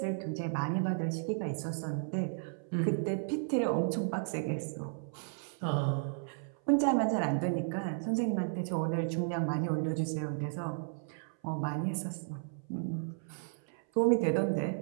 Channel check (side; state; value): left; silent; 55 dB below the other